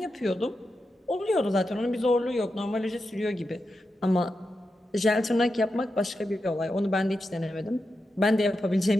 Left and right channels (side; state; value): both; normal; correlation 0.89